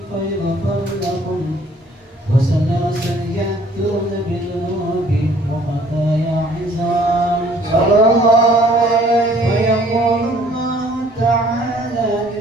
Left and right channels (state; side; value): normal; both; correlation 0.57